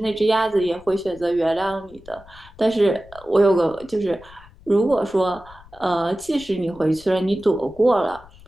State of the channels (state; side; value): noise; left; rumble, 23 dB below the sound